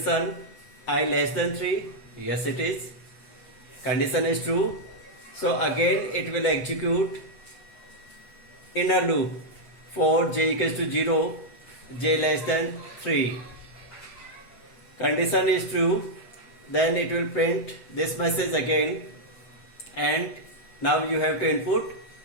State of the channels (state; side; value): late; right; 7.8 ms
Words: I less than 3, yes it is, condition is true. So again it will execute inner loop for j equals to 0, j less than 3. Condition is true, then it will print this message again, and now you have to input